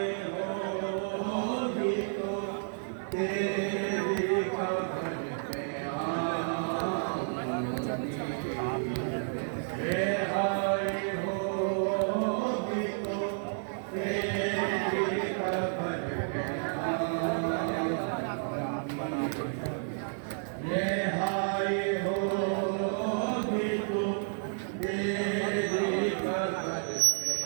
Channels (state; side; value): silent; left; digital silence